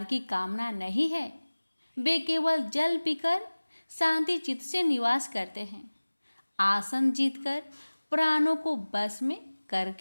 की कामना नहीं है। वे केवल जल पीकर शांति चित्त से निवास करते हैं। आसन जीतकर प्राणों को बस में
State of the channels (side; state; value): both; inverted; correlation -1.00